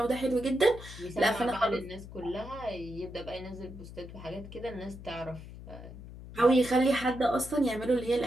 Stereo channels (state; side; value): noise; left; hum, 14 dB below the sound